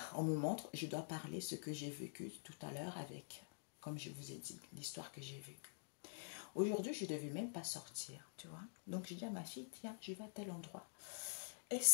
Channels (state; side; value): silent; right; digital silence